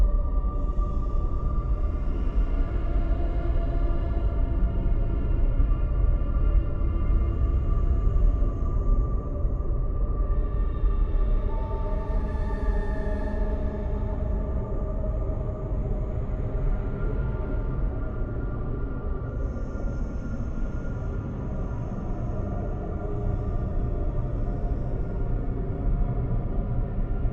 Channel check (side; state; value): both; identical; correlation 1.00